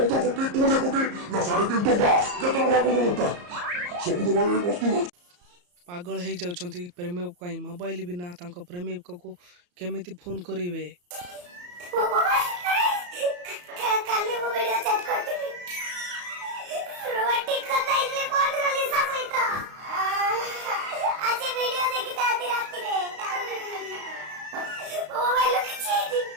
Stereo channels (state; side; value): late; left; 34 ms